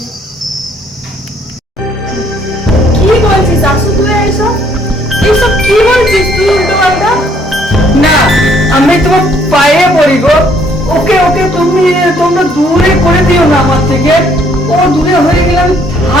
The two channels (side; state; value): both; normal; correlation 0.65